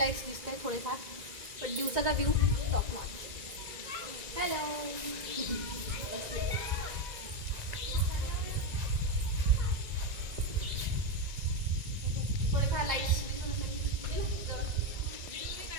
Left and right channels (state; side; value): late; left; 1.9 ms